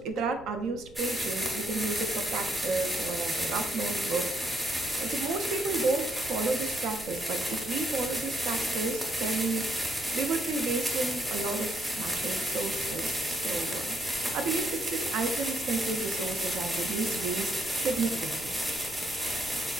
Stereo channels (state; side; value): noise; right; rumble, 19 dB below the sound